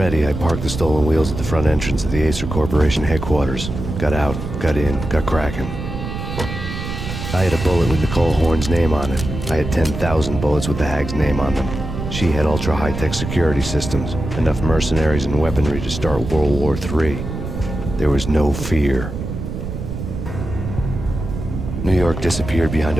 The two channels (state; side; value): noise; right; rumble, 6 dB below the sound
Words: I parked the stolen wheels at the front entrance of the Acer Corporation headquarters. Got out, got in, got cracking. I had a bullet with Nicole Horn's name on it. I had 10,000 bullets with the Hag's name on them. She had ultra-high-tech security systems, enough mercenaries and weaponry to start World War III. There was no fear. New York disappeared behind